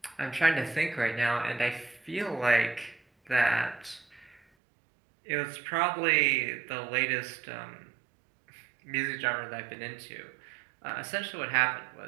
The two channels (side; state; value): left; drops out; at 4.4 s